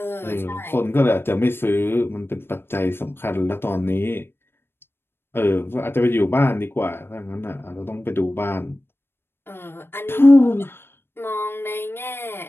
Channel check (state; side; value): late; right; 0.11 ms